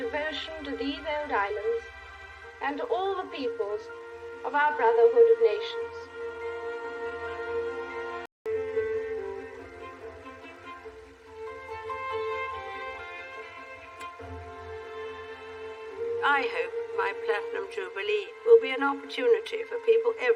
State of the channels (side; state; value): both; identical; correlation 1.00